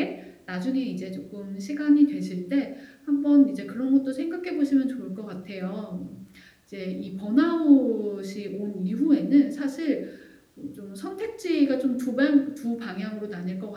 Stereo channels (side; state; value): both; identical; correlation 1.00